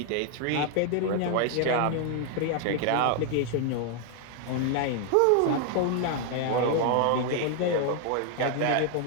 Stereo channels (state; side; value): different; both; correlation 0.00